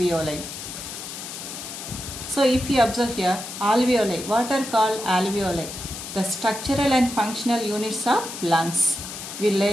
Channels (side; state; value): left; noise; hiss, 9 dB below the sound